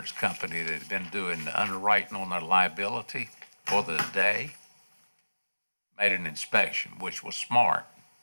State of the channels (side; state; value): both; inverted; correlation -1.00